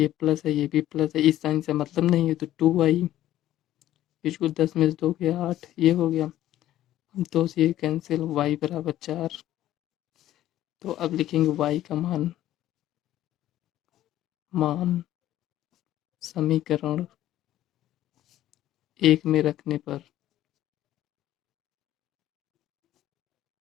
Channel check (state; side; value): quieter; right; 13.3 dB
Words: प्लस है ये भी प्लस है, इस साइन से मतलब नहीं है, तो 2y इसको 10 में से 2 गया 8, ये हो गया। 2 से ये कैंसिल, y बराबर 4। तो अब लिखेंगे y का मान मान समीकरण 1 में रखने पर,